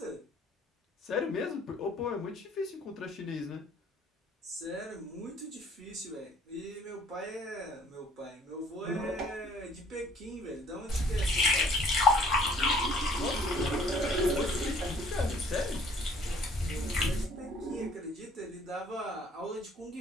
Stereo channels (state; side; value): normal; both; correlation 0.56